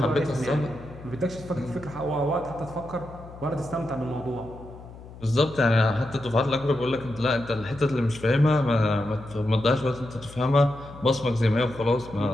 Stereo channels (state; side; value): noise; left; hum, 17 dB below the sound